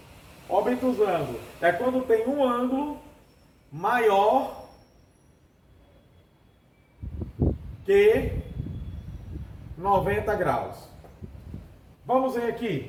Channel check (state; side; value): identical; both; correlation 1.00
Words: Obtusângulo é quando tem um ângulo maior que 90 graus. Vamos ver